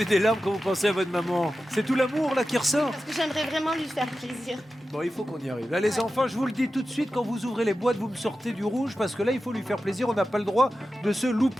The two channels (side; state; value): both; normal; correlation 0.93